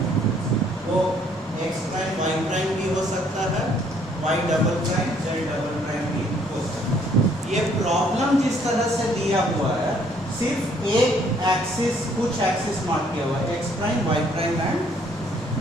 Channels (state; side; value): normal; both; correlation 0.64